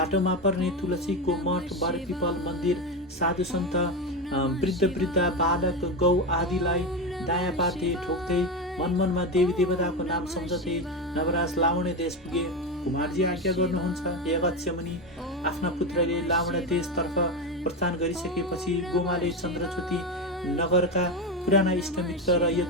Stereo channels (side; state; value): both; normal; correlation 0.16